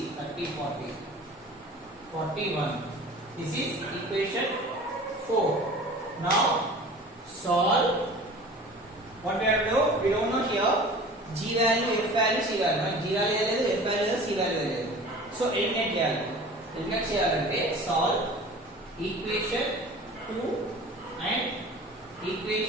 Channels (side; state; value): both; normal; correlation 0.42